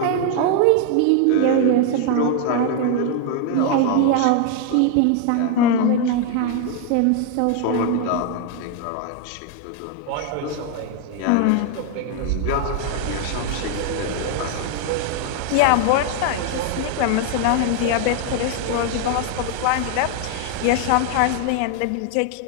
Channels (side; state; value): both; different; correlation 0.00